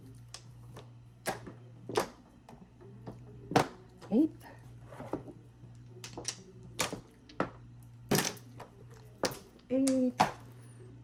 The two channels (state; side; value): identical; both; correlation 1.00